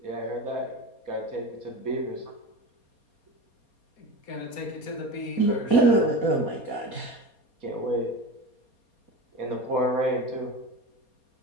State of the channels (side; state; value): right; late; 4.2 ms